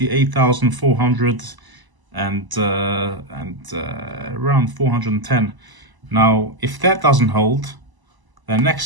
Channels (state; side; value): late; left; 1.0 ms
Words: and around 410. Now, if that doesn't hold, the